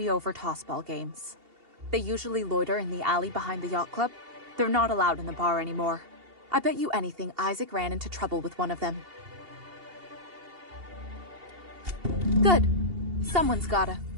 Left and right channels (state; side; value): late; left; 2.8 ms